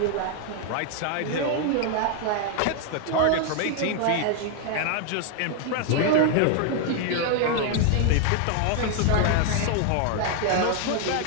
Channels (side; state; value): both; different; correlation 0.00